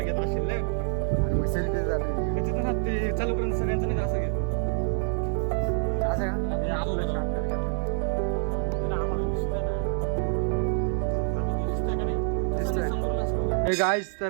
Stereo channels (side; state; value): left; silent; 60 dB below the other